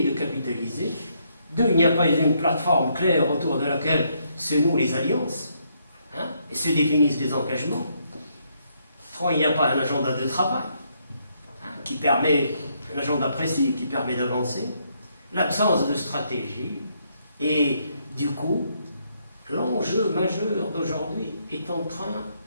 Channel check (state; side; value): inverted; both; correlation -0.73